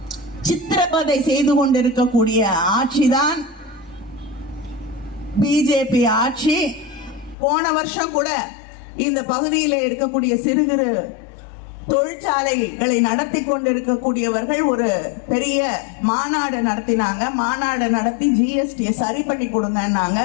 சித்திரவதை செய்து கொண்டிருக்கக்கூடிய ஆட்சிதான் பிஜேபி ஆட்சி. போன வருஷம் கூட இந்த பகுதியில் இருக்கக்கூடிய சிறு குறு தொழிற்சாலைகளை நடத்தி கொண்டிருக்கக்கூடியவர்கள் ஒரு பெரிய மாநாடு நடத்தினாங்க. மாநாடு நடத்தி ஜிஎஸ்டியை சரி பண்ணி கொடுங்கன்னாங்க.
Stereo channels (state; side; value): drops out; right; at 7.4 s